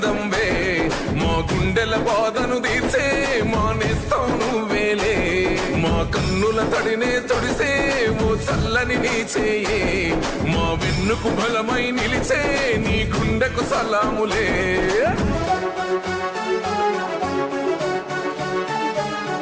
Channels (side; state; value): both; identical; correlation 1.00